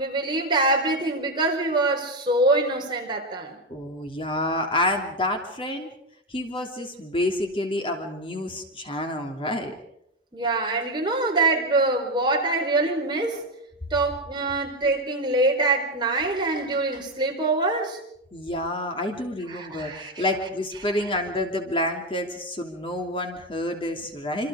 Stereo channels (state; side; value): normal; both; correlation 0.10